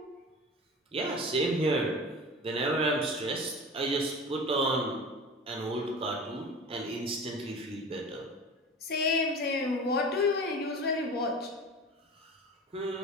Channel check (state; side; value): normal; both; correlation 0.35